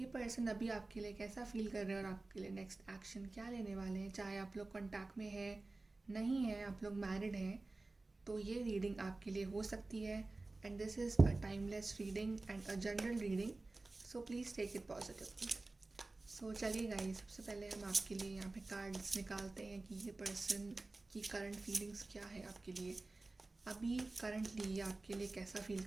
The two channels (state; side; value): quieter; left; 3.2 dB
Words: पर्सन अभी आपके लिए कैसा फील कर रहे हैं और आपके लिए नेक्स्ट एक्शन क्या लेने वाले हैं। चाहे आप लोग कॉन्टैक्ट में है, नहीं है, आप लोग मैरिड हैं, तो ये रीडिंग आपके लिए हो सकती है। And this is a timeless reading and a general reading, so please take it positively. So चलिए गाइस, सबसे पहले हम आपके लिए यहाँ पे कार्ड्स निकालते हैं कि ये पर्सन की करंट फीलिंग्स क्या है आपके लिए। अभी करंटली ये आपके लिए कैसा फील